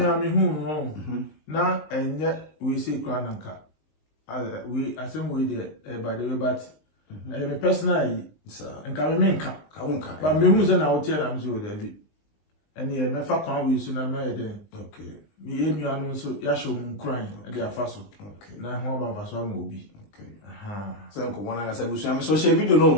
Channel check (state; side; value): late; right; 19 ms